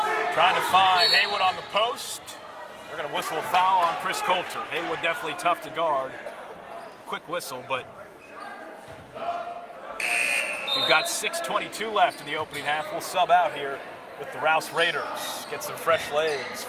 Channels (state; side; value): identical; both; correlation 1.00